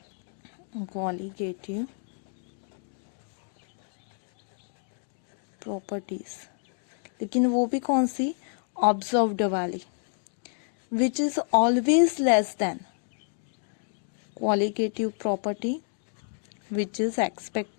qualitative properties, लेकिन वो भी कौन सी, ऑब्जर्व्ड वाली, which is always less then qualitative property which is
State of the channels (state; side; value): silent; right; 59 dB below the other